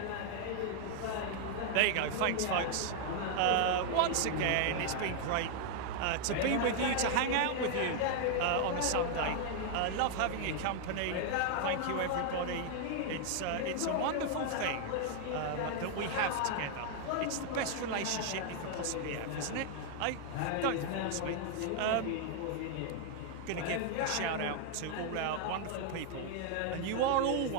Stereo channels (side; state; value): both; different; correlation 0.00